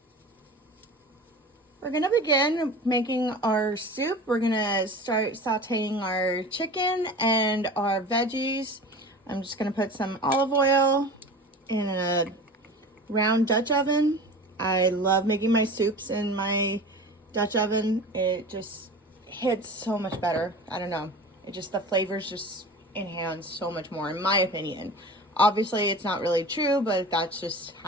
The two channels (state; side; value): normal; both; correlation 0.35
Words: We're gonna begin making our soup. We're gonna start sauteing our chicken and our veggies. I'm just gonna put some olive oil in a round Dutch oven. I love making my soups in my Dutch oven. It just hits so much better. I don't know. The flavors just enhance so much more, in my opinion. Obviously, it's not really true, but that's just